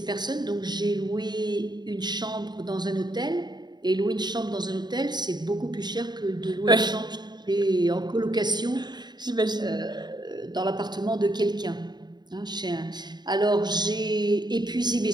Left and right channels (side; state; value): left; late; 0.21 ms